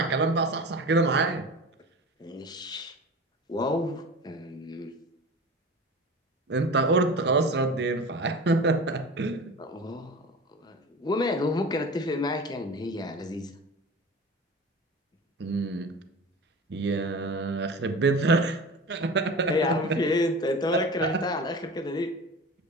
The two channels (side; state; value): both; normal; correlation 0.34